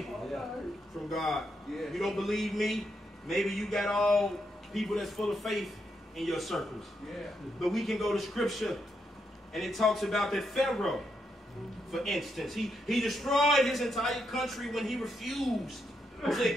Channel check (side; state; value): both; normal; correlation 0.80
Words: from God. You don't believe me? Maybe you got all people that's full of faith in your circles. But we can go to scripture and it talks about that Pharaoh, for instance. He destroyed his entire country when he refused to